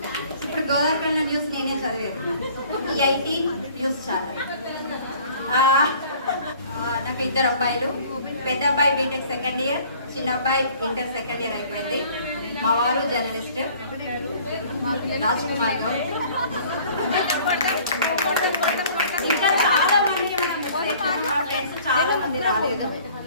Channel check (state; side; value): inverted; both; correlation -0.52